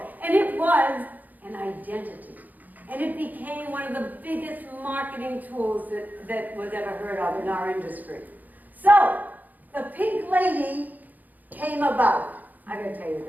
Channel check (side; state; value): left; late; 0.082 ms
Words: And it was an identity. And it became one of the biggest marketing tools that was ever heard of in our industry. So, the Pink Lady came about. I gotta tell you